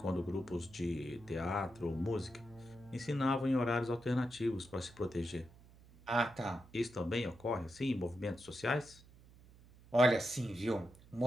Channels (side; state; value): right; noise; hum, 23 dB below the sound